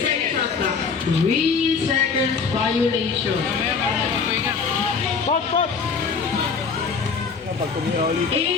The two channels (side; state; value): right; quieter; 5.3 dB